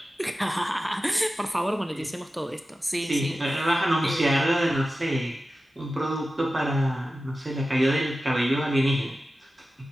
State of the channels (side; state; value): both; normal; correlation 0.94